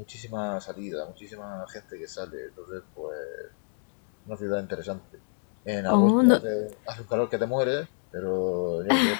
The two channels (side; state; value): right; silent; 59 dB below the other